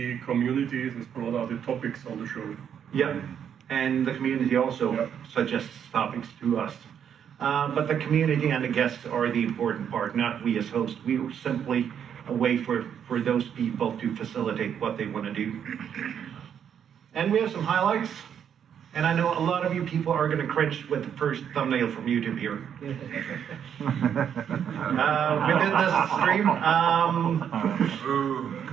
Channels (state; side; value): quieter; left; 8.5 dB